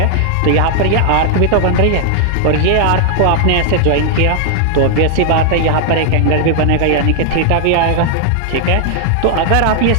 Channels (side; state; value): both; different; correlation 0.00